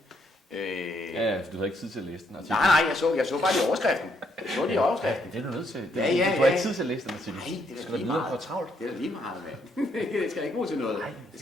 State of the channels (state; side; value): normal; both; correlation 0.73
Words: Ja, for du havde ikke tid til at læse den artikel. Nej, jeg så bare de overskriften. Jeg så de overskriften. Det er du nødt til. Ja. Du har ikke tid til at læse den artikel. Nej, det er skal da lige meget. travlt. Det er da lige meget, mand. Det skal da ikke bruge til noget. Det